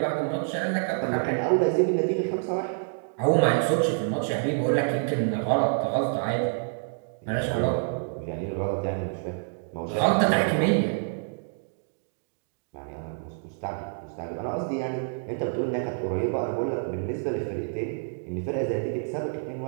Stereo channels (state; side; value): silent; left; digital silence